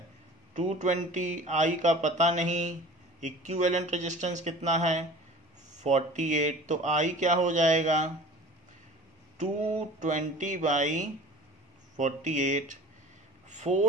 220, I का पता नहीं, इक्विवेलेंट रेजिस्टेंस कितना है 48, तो I क्या हो जाएगा 220 बाई 48।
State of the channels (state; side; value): normal; both; correlation 0.42